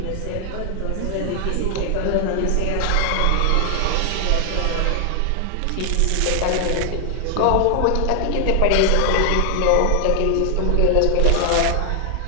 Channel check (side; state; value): both; different; correlation 0.00